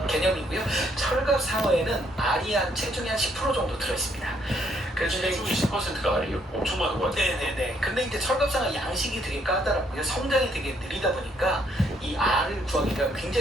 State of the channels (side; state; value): both; normal; correlation 0.70